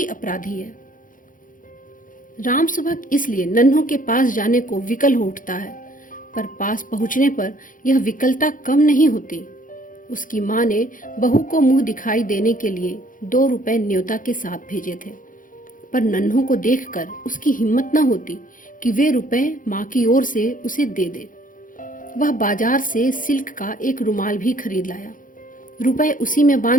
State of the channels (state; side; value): late; right; 0.39 ms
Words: अपराधी है। राम सुभग इसलिए नन्हों के पास जाने को विकल हो उठता है, पर पास पहुंचने पर यह विकलता कम नहीं होती। उसकी माँ ने बहू को मुंह दिखाई देने के लिए 2 रुपए न्योता के साथ भेजे थे, पर नन्हों को देखकर उसकी हिम्मत न होती कि वे रुपए माँ की ओर से उसे दे दे। वह बाजार से सिल्क का एक रुमाल भी खरीद लाया। रुपए उसी में